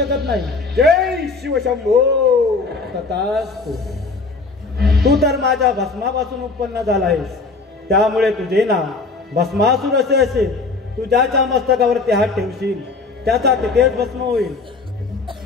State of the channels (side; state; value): right; quieter; 3.9 dB